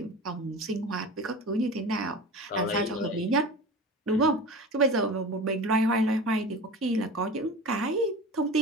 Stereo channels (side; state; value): both; normal; correlation 0.33